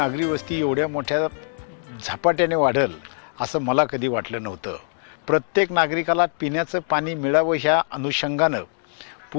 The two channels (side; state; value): right; silent; 63 dB below the other